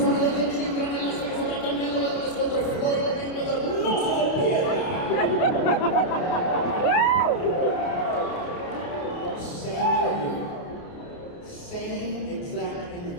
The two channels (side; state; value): right; late; 29 ms